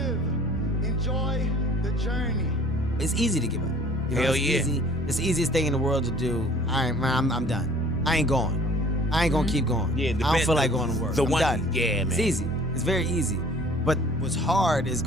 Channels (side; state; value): both; normal; correlation 0.51